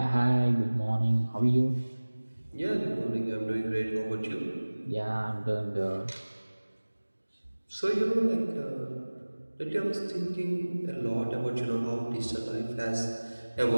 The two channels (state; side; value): inverted; both; correlation -1.00